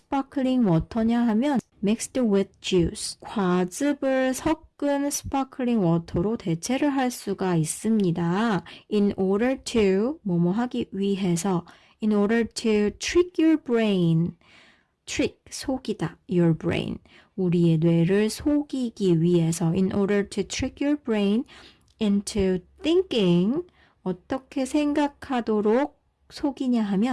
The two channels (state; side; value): identical; both; correlation 1.00